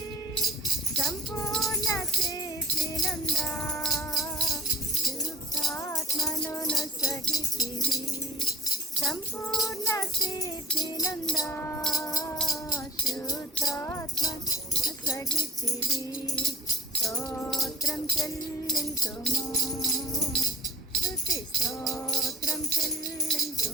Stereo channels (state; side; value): normal; both; correlation 0.49